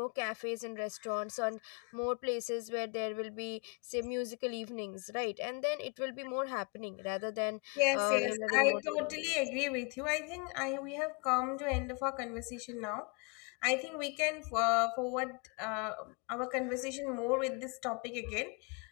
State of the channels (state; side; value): quieter; right; 33.2 dB